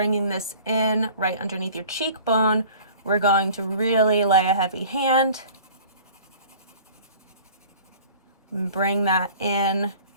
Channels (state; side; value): inverted; both; correlation -0.46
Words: this in right underneath your cheekbone, we're going to really lay a heavy hand. Bring that in